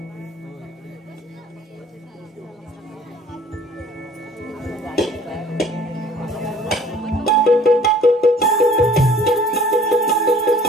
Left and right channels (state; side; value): normal; both; correlation 0.52